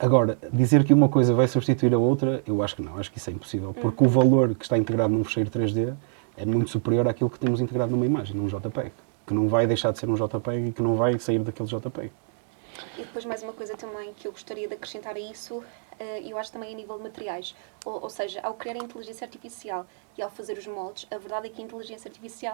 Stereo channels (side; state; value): left; silent; digital silence